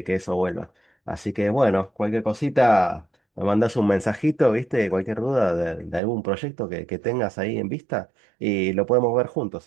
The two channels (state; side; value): drops out; left; at 6.0 s